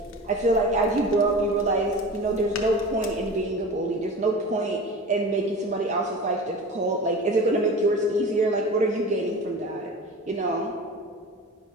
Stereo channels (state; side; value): normal; both; correlation 0.34